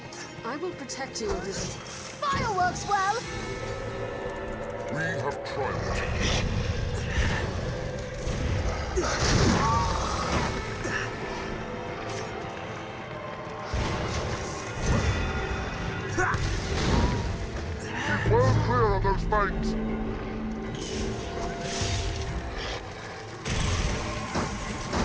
I will protect you, Elizabeth. Fireworks well! We have triumphed. Keep well clear of those banks!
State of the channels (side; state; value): both; identical; correlation 1.00